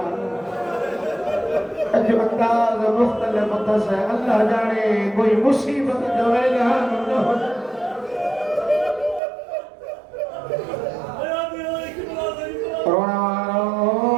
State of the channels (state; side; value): drops out; left; at 9.2 s